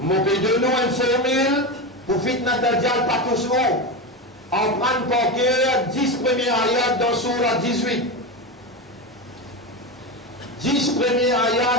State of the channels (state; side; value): normal; both; correlation 0.18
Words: pays de nous une formule pour fitna Dajjal pas tous haut. En prendre par cœur 10 premiers ayats dans Surah 18. 10 premiers